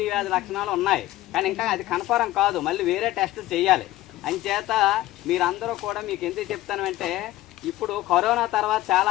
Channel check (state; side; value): quieter; right; 16.3 dB